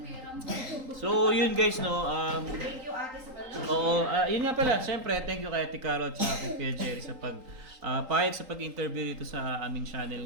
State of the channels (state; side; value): late; left; 3.8 ms